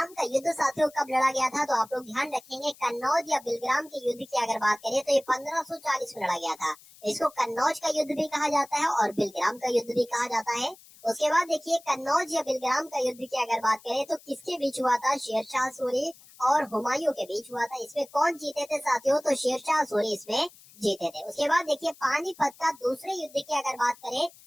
का युद्ध साथियों कब लड़ा गया था, तो आप लोग ध्यान रखेंगे, कन्नौज या बिलग्राम के युद्ध की अगर बात करें तो ये 1540 में लड़ा गया था। इसको कन्नौज का युद्ध भी कहा जाता है और बिलग्राम का युद्ध भी कहा जाता है। उसके बाद देखिए कन्नौज या बिलग्राम का युद्ध की अगर बात करें तो किसके बीच हुआ था, शेरशाह सूरी और हुमायूं के बीच हुआ था। इसमें कौन जीते थे साथियों, तो शेरशाह सूरी इसमें जीते थे। उसके बाद देखिए पानीपत का दूसरे युद्ध की अगर बात करें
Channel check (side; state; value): left; noise; hiss, 23 dB below the sound